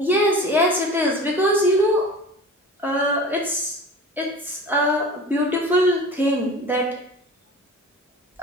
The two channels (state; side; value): normal; both; correlation 0.37